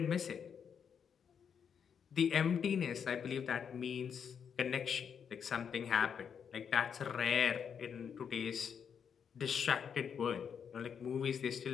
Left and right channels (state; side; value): quieter; right; 7.3 dB